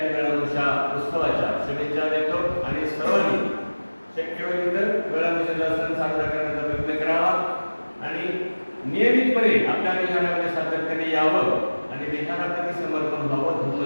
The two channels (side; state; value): both; inverted; correlation -1.00